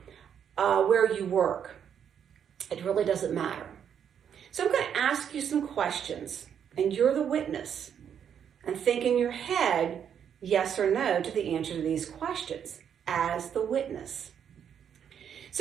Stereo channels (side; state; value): left; quieter; 8.4 dB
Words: where you work. It really doesn't matter. So I'm going to ask you some questions, and you're the witness. And think in your head, yes or no, to the answer to these questions as the witness.